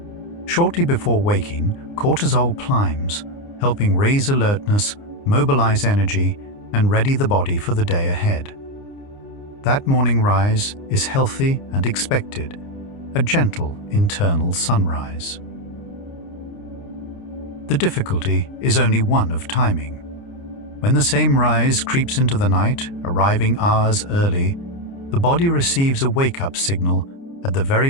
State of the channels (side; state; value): right; late; 29 ms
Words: Shortly before waking, cortisol climbs, helping raise alertness, mobilize energy, and ready the body for the day ahead. That morning rise is healthy and expected, a gentle internal sunrise. The difficulty is only one of timing. When the same rise creeps into the night, arriving hours early, the body receives a wake-up signal at the very